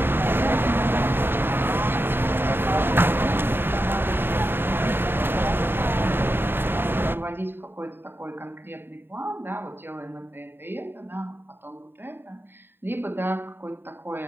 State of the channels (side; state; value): left; late; 0.10 ms